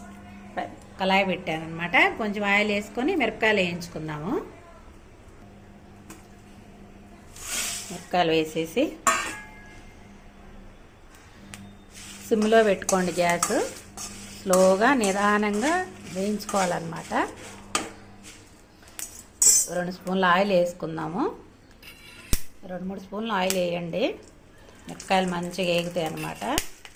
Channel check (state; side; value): identical; both; correlation 1.00